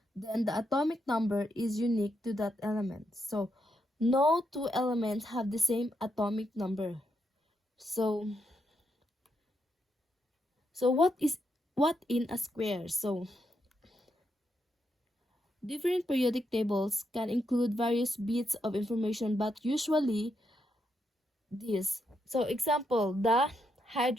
Then, the atomic number is unique to that element. So, no two elements have the same atomic number. So, what in a square? So, different periodic tables can include various bits of information, but usually this. So, example, the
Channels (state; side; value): normal; both; correlation 0.81